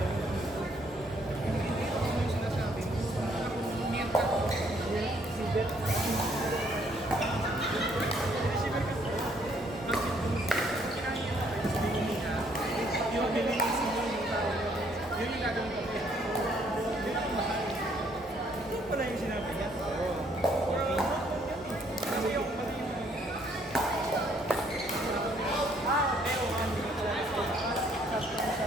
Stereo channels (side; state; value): both; normal; correlation 0.66